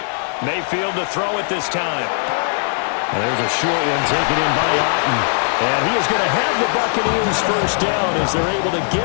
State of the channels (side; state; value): right; silent; 67 dB below the other